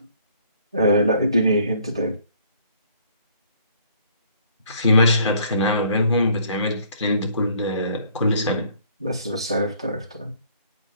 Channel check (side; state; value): both; inverted; correlation -0.60